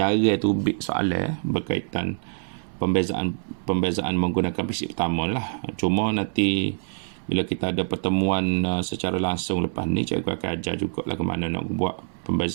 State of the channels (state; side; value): silent; left; 62 dB below the other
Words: tu soalan berkaitan pembezaan menggunakan prinsip pertama lah. Cuma nanti bila kita ada pertemuan secara langsung lepas ni, cikgu akan ajar juga lah ke mana nak buat